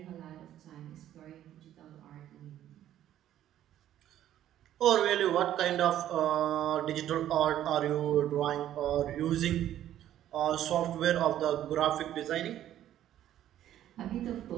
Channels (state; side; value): quieter; left; 11.9 dB